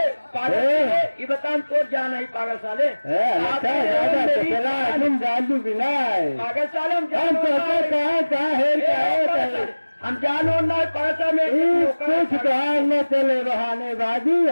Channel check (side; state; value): both; inverted; correlation -1.00